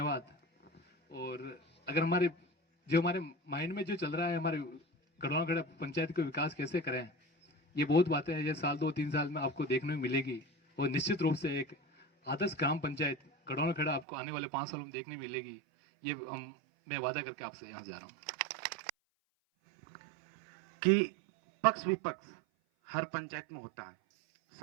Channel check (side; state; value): left; drops out; at 14.1 s